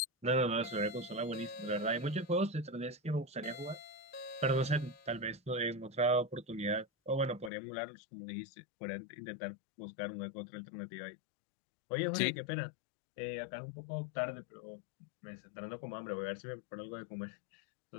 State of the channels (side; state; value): right; drops out; at 7.5 s